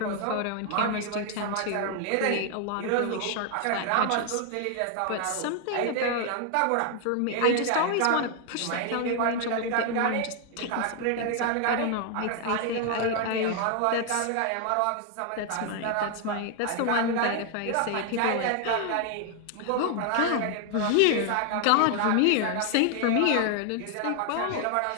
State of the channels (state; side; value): different; both; correlation 0.00